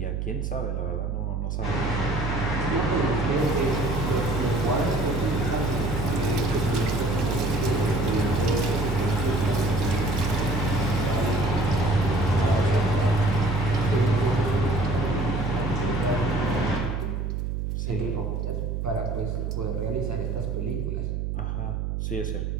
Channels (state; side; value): noise; right; hum, 2 dB below the sound